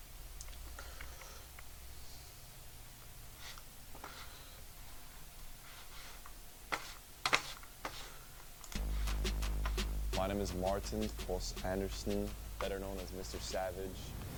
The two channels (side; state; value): both; identical; correlation 1.00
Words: My name is Martin Foss Anderson, better known as Mr. Savage.